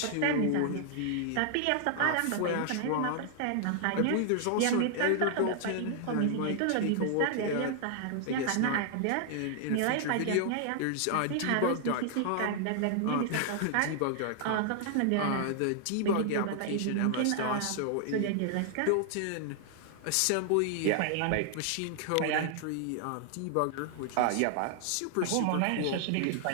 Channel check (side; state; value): both; different; correlation 0.00